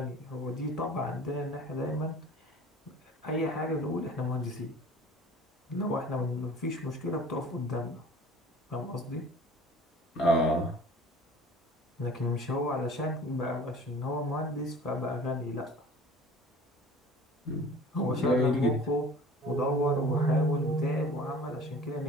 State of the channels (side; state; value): both; normal; correlation 0.44